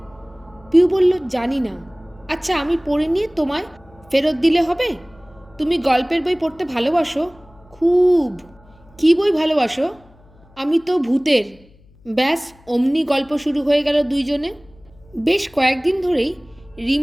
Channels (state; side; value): noise; left; hum, 28 dB below the sound